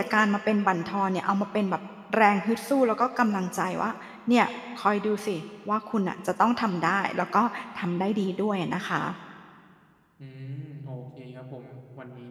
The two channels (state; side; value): identical; both; correlation 1.00